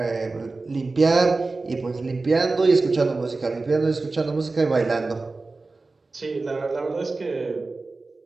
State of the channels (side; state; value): left; quieter; 3.6 dB